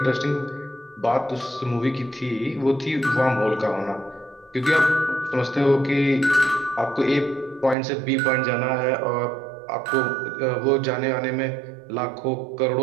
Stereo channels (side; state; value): left; drops out; at 7.8 s